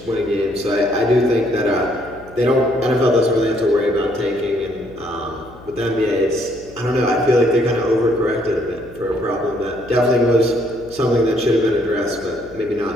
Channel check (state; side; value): noise; left; hum, 21 dB below the sound